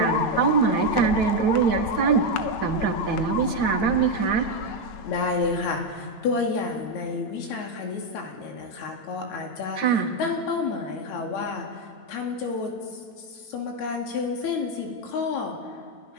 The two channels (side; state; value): right; late; 9.1 ms